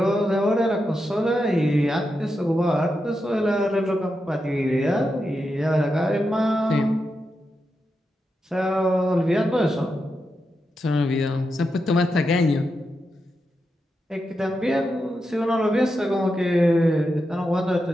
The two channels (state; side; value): normal; both; correlation 0.87